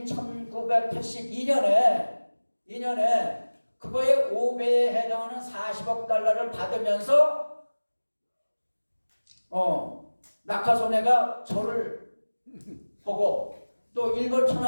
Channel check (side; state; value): both; inverted; correlation -1.00